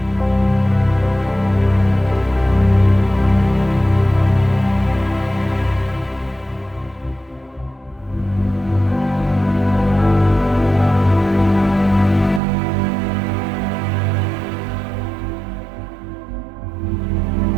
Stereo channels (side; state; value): left; drops out; at 12.4 s